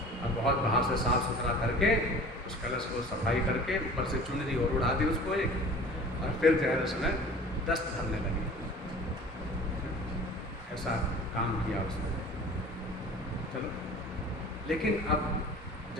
अब बहुत बाहर से साफ सुथरा करके उस कलश को सफाई करके ऊपर से चुनरी और उड़ा दी उसको एक, और फिर जो है उसमें दस्त भरने लगी। ऐसा काम किया उसने। चलो, लेकिन अब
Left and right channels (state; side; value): normal; both; correlation 0.43